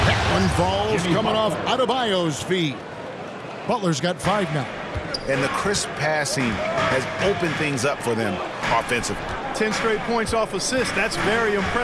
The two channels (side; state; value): both; identical; correlation 1.00